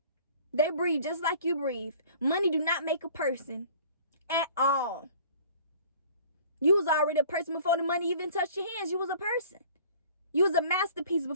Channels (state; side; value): inverted; both; correlation -0.49